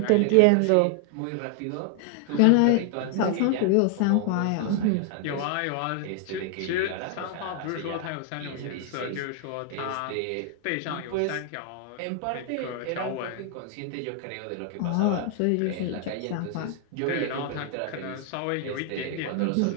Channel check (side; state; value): both; different; correlation 0.00